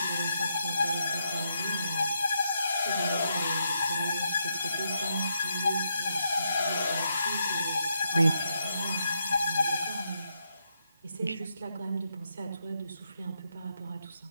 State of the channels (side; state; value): both; inverted; correlation -0.80